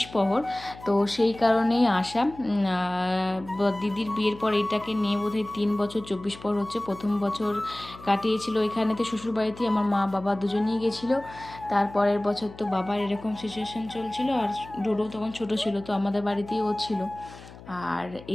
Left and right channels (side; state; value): left; noise; hum, 18 dB below the sound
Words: প্রহর, তো সেই কারণেই আসা। দিদির বিয়ের পর এটাকে নিয়ে বোধহয় 3 বছর 24 প্রহর হচ্ছে। প্রথম বছর কাটিয়েছিল এখানেতে শ্বশুরবাড়িতেই, আমার মা বাবা দুজনেই গেছিলো। তারপরের বছর তো বাবার এরকম সিচুয়েশান চলছিল, আর ডোডো তখন ছোটো ছিল, তো আমাদের বাড়িতেই ও ছিল। আর